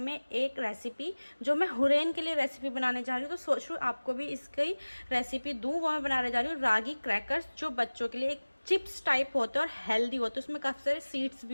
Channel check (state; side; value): inverted; both; correlation -1.00